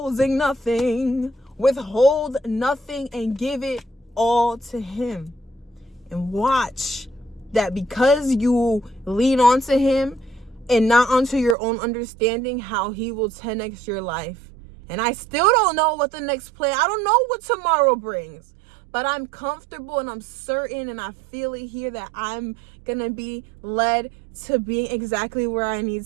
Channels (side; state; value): left; drops out; at 11.6 s